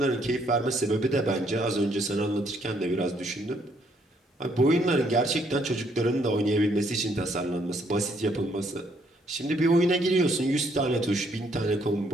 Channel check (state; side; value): normal; both; correlation 0.69